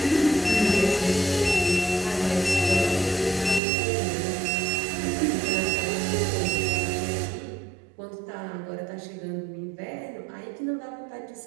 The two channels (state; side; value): drops out; left; at 3.6 s